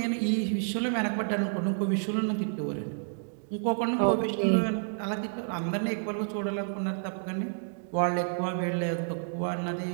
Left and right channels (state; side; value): silent; left; digital silence